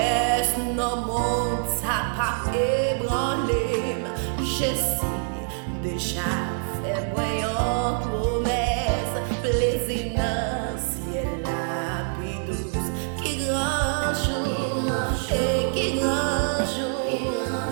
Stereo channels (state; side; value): silent; left; 61 dB below the other